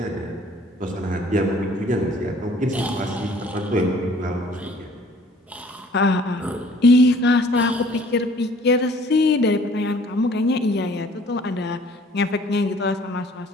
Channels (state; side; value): normal; both; correlation 0.55